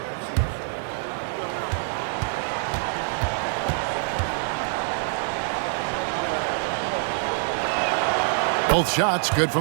Both shots good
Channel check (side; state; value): left; silent; digital silence